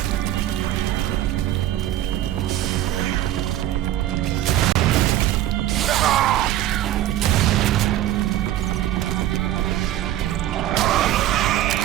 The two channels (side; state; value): left; quieter; 13.3 dB